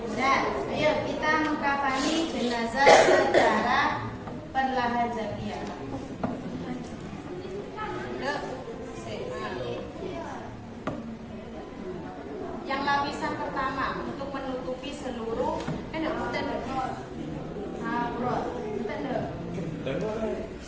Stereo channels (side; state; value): both; identical; correlation 1.00